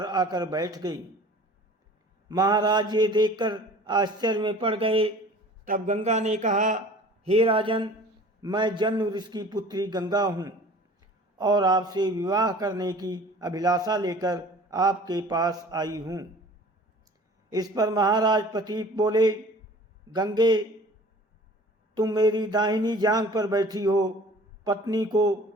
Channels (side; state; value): both; normal; correlation 0.46